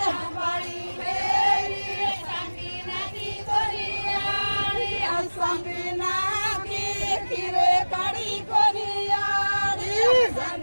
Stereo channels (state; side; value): inverted; both; correlation -1.00